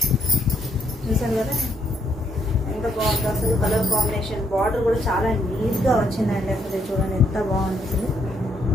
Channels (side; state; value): both; normal; correlation 0.72